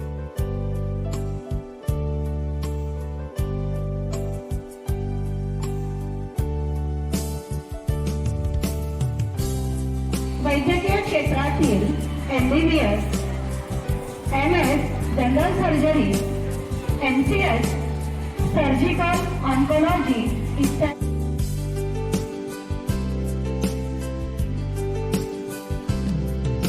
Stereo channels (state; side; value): identical; both; correlation 1.00